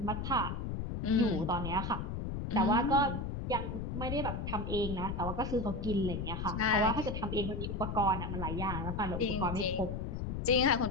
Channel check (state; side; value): noise; left; rumble, 4 dB below the sound